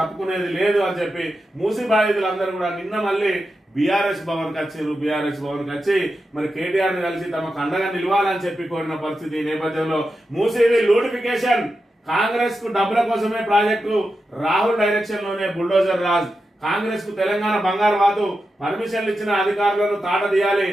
తప్పుకునేది లేదు అని చెప్పి మూసీ బాధితులందరూ కూడా నిన్న మళ్ళీ బీఆర్ఎస్ భవన్ వచ్చారు. బీఆర్ఎస్ భవన్ వచ్చి మరి కేటీఆర్ ని కలిసి తమకు అండగా నిలవాలని చెప్పి కోరిన పరిస్థితి. ఈ నేపథ్యంలో మూసీవి లూటిఫికేషన్, కాంగ్రెస్ కు డబ్బుల కోసమే ప్రాజెక్టు, రాహుల్ డైరెక్షన్ లోనే బుల్డోజర్ రాజ్, కాంగ్రెస్ కు తెలంగాణ బంగారు వాతు, పర్మిషన్లు ఇచ్చిన అధికారులను తాట తీయాలి,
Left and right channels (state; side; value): normal; both; correlation 0.89